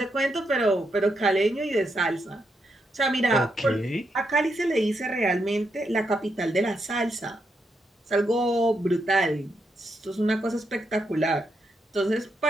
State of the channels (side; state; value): both; normal; correlation 0.81